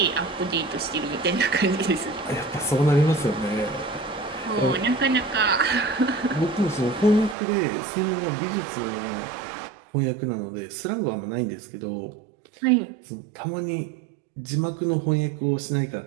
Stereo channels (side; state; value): left; drops out; at 7.4 s